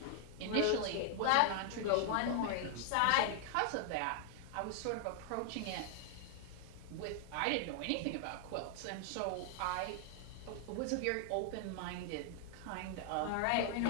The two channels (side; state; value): both; different; correlation 0.00